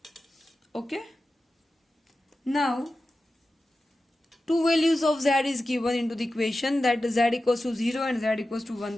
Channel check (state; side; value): normal; both; correlation 0.93